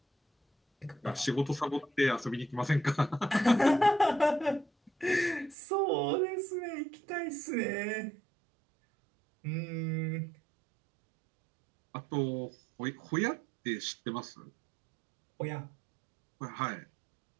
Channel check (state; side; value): drops out; left; at 5.6 s